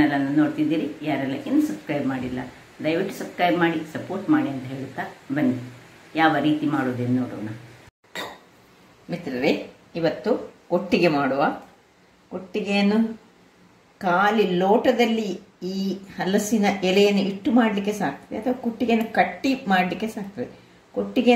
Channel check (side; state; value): both; identical; correlation 1.00